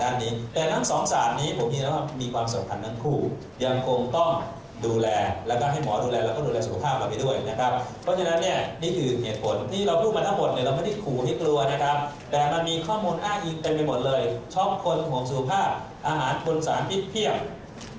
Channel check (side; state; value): both; identical; correlation 1.00